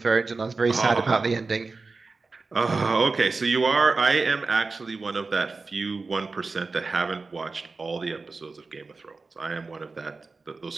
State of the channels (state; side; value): quieter; left; 4.0 dB